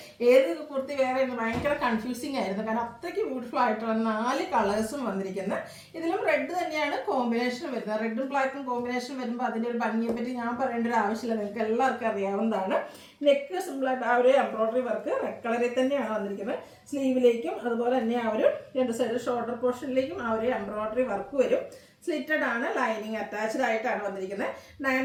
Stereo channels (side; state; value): both; identical; correlation 1.00